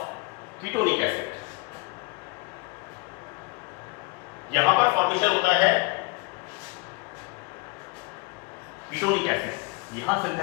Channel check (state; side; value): quieter; right; 28.2 dB